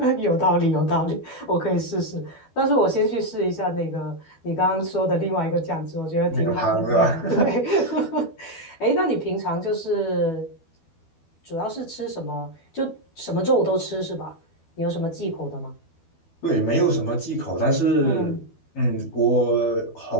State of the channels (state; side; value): late; right; 12 ms